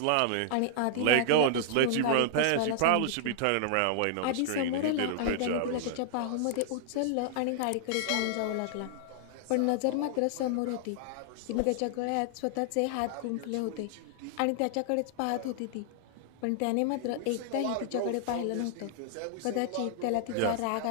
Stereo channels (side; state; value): both; different; correlation -0.01